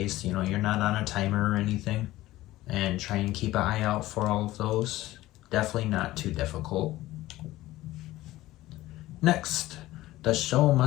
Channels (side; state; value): right; quieter; 16.6 dB